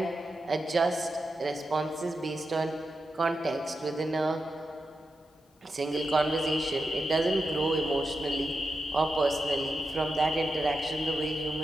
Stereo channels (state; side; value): normal; both; correlation 0.89